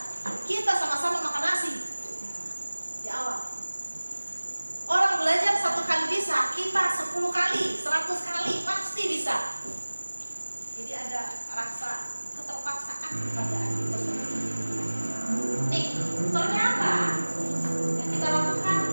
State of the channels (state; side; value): inverted; both; correlation -1.00